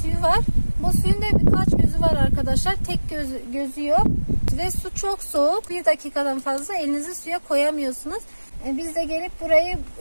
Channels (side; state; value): both; inverted; correlation -1.00